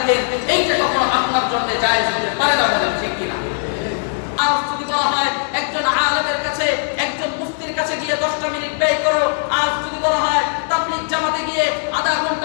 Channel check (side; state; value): right; silent; 67 dB below the other